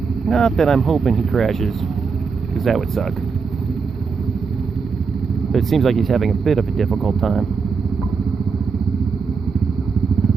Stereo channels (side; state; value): left; quieter; 5.3 dB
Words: Not that I'm hoping he crashes, because that would suck. But it seems like he's having a bit of a difficult time.